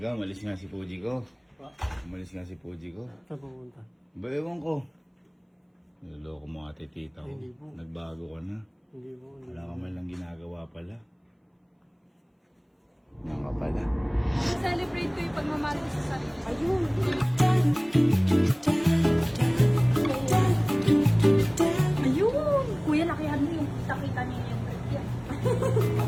ka, umalis nga si Puji ko. Umalis nga si Puji ko. Saan pupunta? Ba, ewan ko. Niloloko mo ate tita ko. Hindi po. Nagbago ka na. Hindi po. Wala ka man lang ginagawa pala. Yan ka pala. Celebrate ko yung pagmamahal ko sa sarili. Ayun! Ayun! Kuya, lakihan mo yung nakita niya yung break yan.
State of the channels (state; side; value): identical; both; correlation 1.00